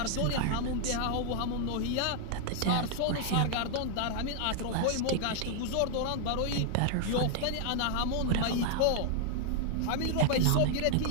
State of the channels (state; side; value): different; both; correlation 0.00